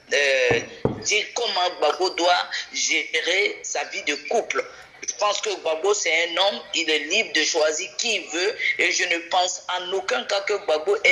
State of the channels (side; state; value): both; identical; correlation 1.00